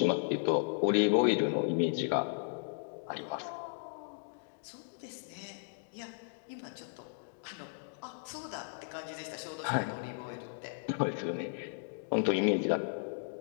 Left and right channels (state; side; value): silent; right; digital silence